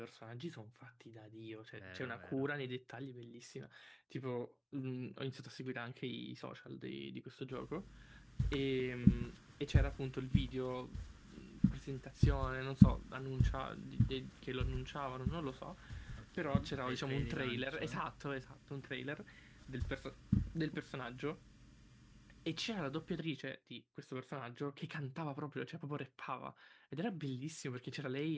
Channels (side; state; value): both; identical; correlation 1.00